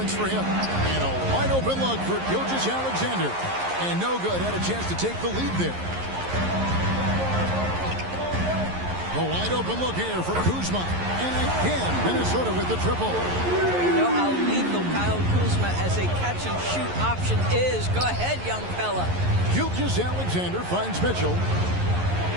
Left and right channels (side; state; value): left; late; 11 ms